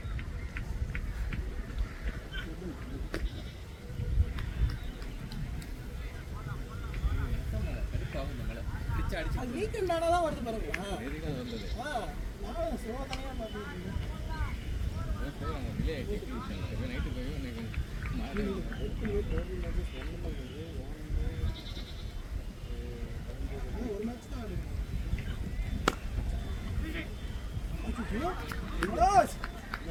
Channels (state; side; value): identical; both; correlation 1.00